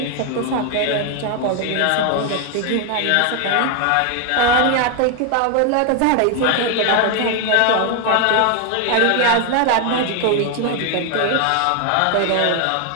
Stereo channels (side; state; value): both; different; correlation 0.01